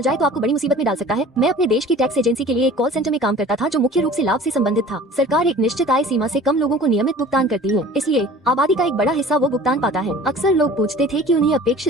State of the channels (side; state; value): both; normal; correlation 0.45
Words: जाए तो आपको बड़ी मुसीबत में डाल सकता है? मैं अपने देश की टैक्स एजेंसी के लिए एक कॉल सेंटर में काम करता था जो मुख्य रूप से लाभ से संबंधित था। सरकार एक निश्चित आय सीमा से कम लोगों को नियमित भुगतान करती है, इसलिए आबादी का एक बड़ा हिस्सा वो भुगतान पाता है। अक्सर लोग पूछते थे कि उन्हें